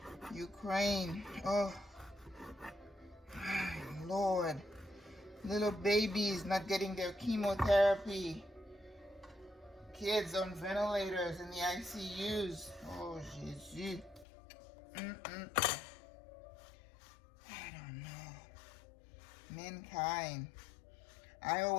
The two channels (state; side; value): drops out; right; at 14.2 s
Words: Ukraine, oh, Lord. Little babies not getting their chemotherapy. Kids on ventilators in the ICUs. Oh, Jesus. I don't know. Mankind. I